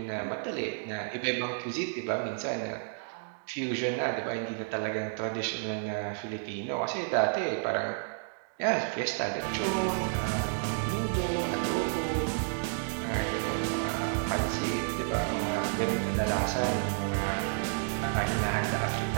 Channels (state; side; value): silent; left; digital silence